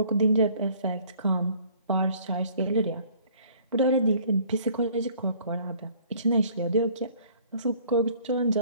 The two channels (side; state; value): both; inverted; correlation -0.56